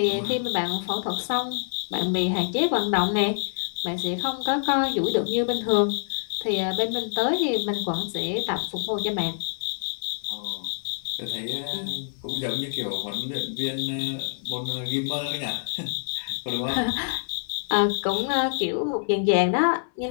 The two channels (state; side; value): silent; right; 61 dB below the other